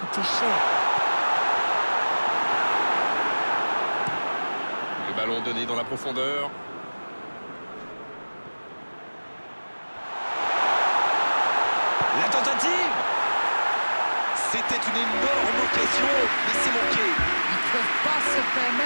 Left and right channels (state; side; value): inverted; both; correlation -1.00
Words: cher. Le ballon donné dans la profondeur. La tentative. C'était une énorme occasion, mais c'est manqué. Ils ne peuvent pas se